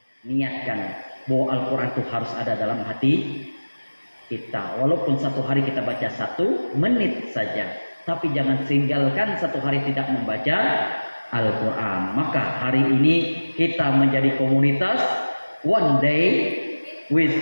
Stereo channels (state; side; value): inverted; both; correlation -1.00